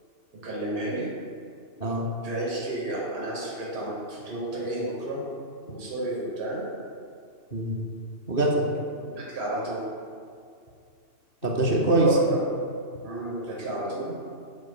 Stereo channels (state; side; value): late; right; 2.6 ms